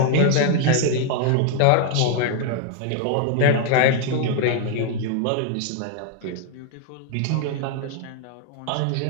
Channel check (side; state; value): both; different; correlation 0.01